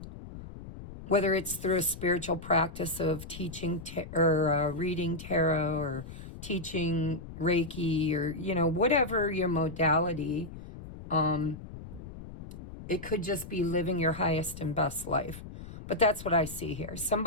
Whether it's through a spiritual practice of teaching or reading tarot, or teaching Reiki, or, you know, whatever your modality, it could just be living your highest and best life. But that's what I see here.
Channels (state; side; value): noise; left; rumble, 13 dB below the sound